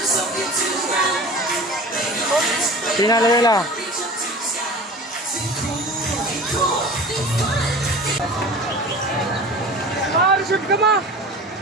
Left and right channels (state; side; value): normal; both; correlation 0.38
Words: Pinalayala. Shoot ka ma!